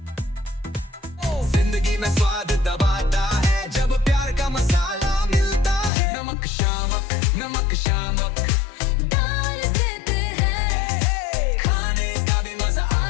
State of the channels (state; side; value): drops out; right; at 5.9 s